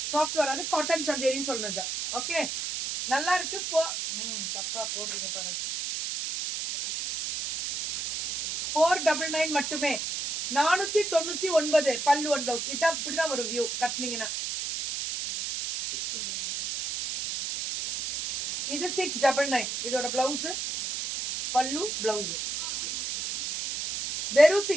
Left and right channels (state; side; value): noise; right; hiss, 4 dB below the sound